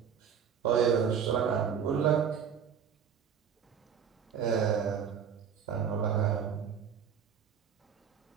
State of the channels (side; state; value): left; quieter; 7.6 dB